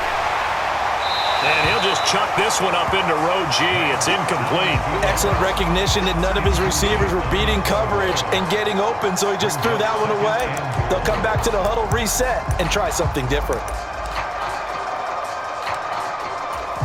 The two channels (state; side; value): identical; both; correlation 1.00